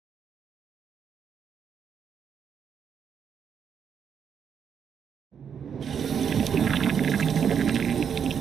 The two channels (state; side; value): quieter; left; 7.6 dB